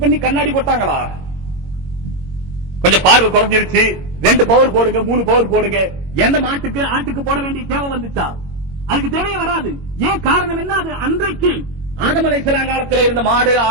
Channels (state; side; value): late; left; 22 ms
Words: பண்ணி கண்ணாடி போட்டாங்களா? கொஞ்சம் பார்வை குறைஞ்சிருச்சு, 2 பவர் போடுங்க, 3 பவர் போடுங்க. எந்த மாட்டுக்கு ஆட்டுக்கு போட வேண்டிய தேவை வந்துச்சா? அதுக்கு தேவையே வராது. ஏன் காரணம் என்ன? அது அன்றைக்கு ஆதம் அலைஹிஸ்ஸலாம் காலத்தில் இருந்த மாடு,